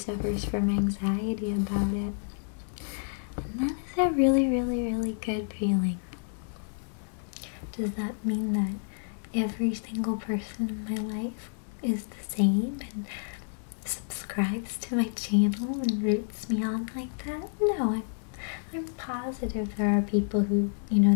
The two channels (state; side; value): silent; right; 58 dB below the other